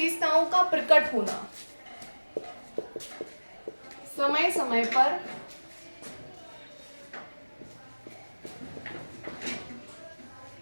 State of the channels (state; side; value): inverted; both; correlation -1.00